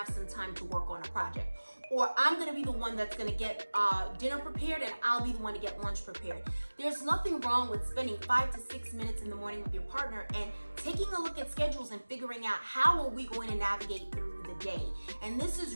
some time to work on a project. Or I'm gonna be the one that's gonna get dinner prepared and I'll be the one to get lunch prepared. There's nothing wrong with spending 5 to 6 minutes in the morning with your partner and taking a look at schedules and figuring out how are we going to navigate through the day. And this is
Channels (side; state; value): both; inverted; correlation -1.00